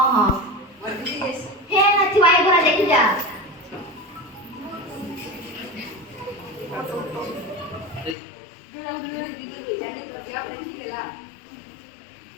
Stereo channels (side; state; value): right; drops out; at 8.2 s